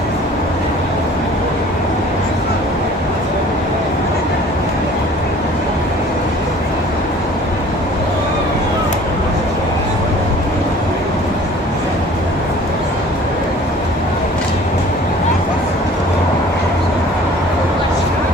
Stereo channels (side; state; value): both; normal; correlation 0.49